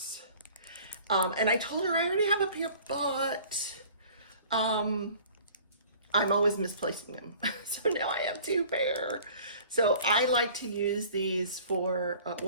And I told her I already have a pair, but I'm always misplacing them. So now I have two pair. So I like to use these for,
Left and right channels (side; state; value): both; inverted; correlation -0.49